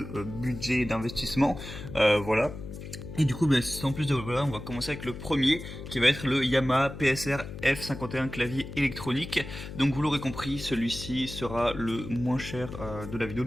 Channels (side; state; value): left; noise; hum, 11 dB below the sound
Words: budget d'investissement. Voilà. Et du coup, sans plus de voilà, on va commencer avec le premier, qui va être le Yamaha PSR F51 clavier électronique. Donc vous l'aurez compris, celui-ci sera le moins cher de la vidéo.